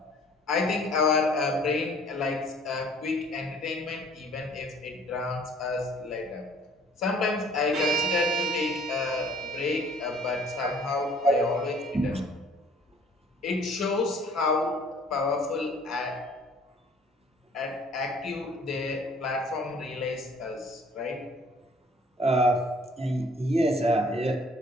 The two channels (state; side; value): normal; both; correlation 0.55